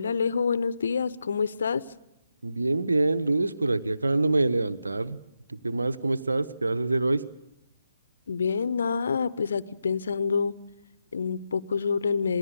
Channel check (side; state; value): both; inverted; correlation -0.87